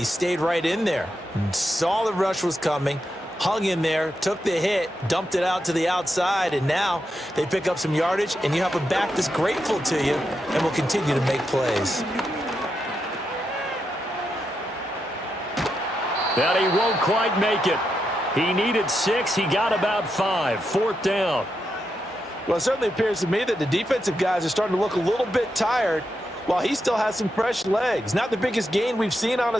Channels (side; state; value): both; normal; correlation 0.85